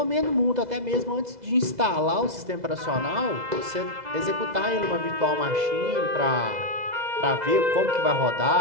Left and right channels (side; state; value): left; late; 2.0 ms